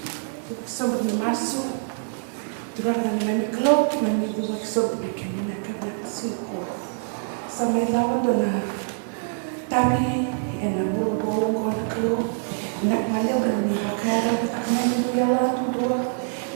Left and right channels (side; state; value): left; silent; digital silence